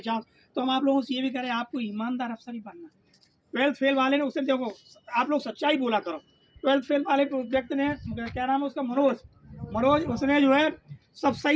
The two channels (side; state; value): both; identical; correlation 1.00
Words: चांस, तो हम आप लोगों से ये भी करें, आपको ईमानदार अफसर ही बनना। 12th फेल वाले ने, उससे देखो आप लोग सच्चाई बोला करो। 12th फेल वाले व्यक्ति ने, क्या नाम है उसका, मनोज, उसने जो है सब